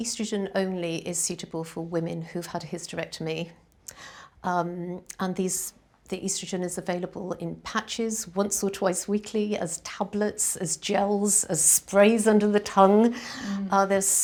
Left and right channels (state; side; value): identical; both; correlation 1.00